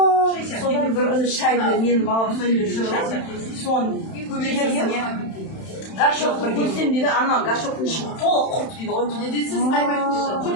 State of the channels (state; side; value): late; right; 31 ms